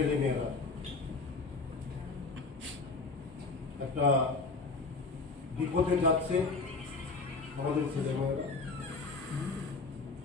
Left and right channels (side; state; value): right; quieter; 3.9 dB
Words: একটা বিপদে যাচ্ছে। আমাদের ছেলেমেয়েরা